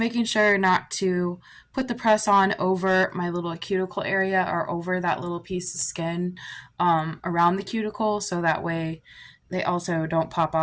sure not to put the press on over my little cuticle area or over that little piece of skin around the cuticle, so that way they also don't pop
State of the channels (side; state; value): both; identical; correlation 1.00